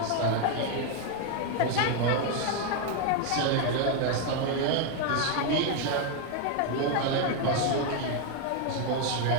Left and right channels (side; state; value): both; different; correlation 0.01